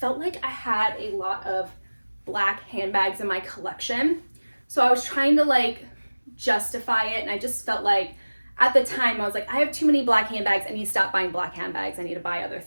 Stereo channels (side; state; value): both; inverted; correlation -1.00